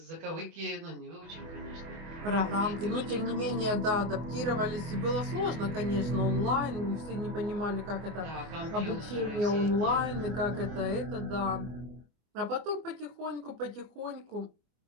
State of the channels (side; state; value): left; late; 24 ms